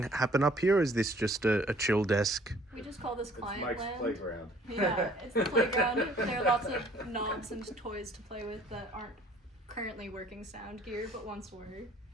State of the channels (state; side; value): normal; both; correlation 0.56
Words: happen up here, or is this just a chill desk? We just call this client Mike's land. playground. Yeah, it's the playground. There are lots of knobs and toys to play with that aren't currently working sound gear, but once were.